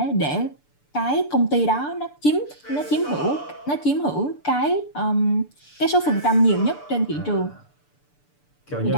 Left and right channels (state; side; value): late; right; 6.8 ms